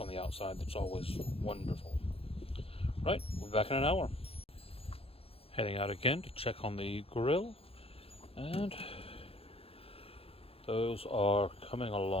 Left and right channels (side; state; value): right; late; 0.28 ms